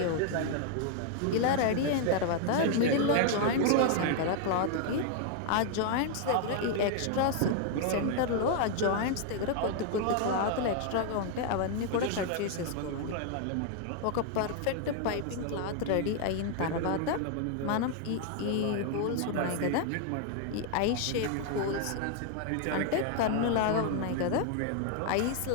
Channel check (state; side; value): different; both; correlation 0.00